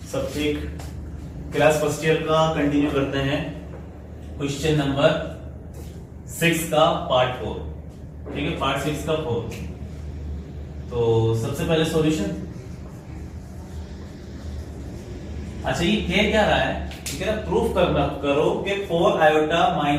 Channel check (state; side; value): identical; both; correlation 1.00